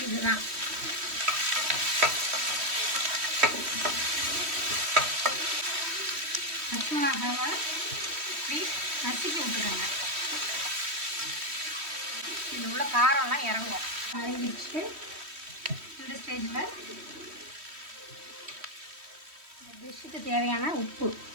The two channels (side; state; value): left; late; 3.1 ms